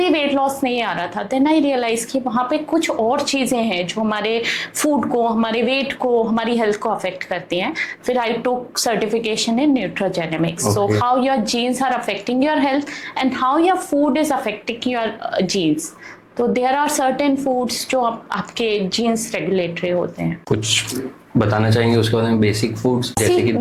वेट लॉस नहीं आ रहा था। देन आई रियलाइज कि वहाँ पे कुछ और चीज़ें हैं जो हमारे फूड को, हमारे वेट को, हमारी हेल्थ को अफेक्ट करती हैं। फिर I took certification in nutrigenomics, so how your genes are affecting your health and how your food is affecting your genes. तो देयर आर सर्टेन फूड्स जो आपके जीन्स रेगुलेटरी होते हैं। कुछ बताना चाहेंगे उसके बारे में? बेसिक फूड्स जैसे कि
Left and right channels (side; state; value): both; identical; correlation 1.00